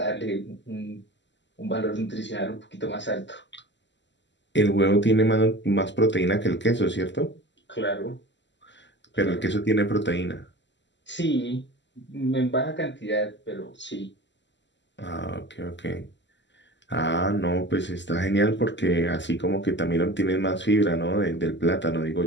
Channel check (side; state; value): right; late; 0.53 ms